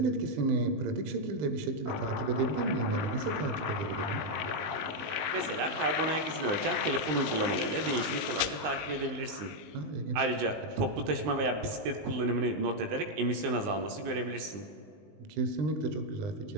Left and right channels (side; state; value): left; late; 19 ms